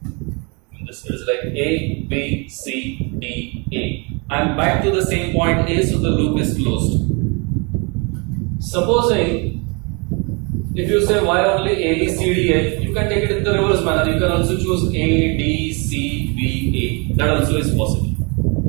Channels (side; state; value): left; quieter; 31.5 dB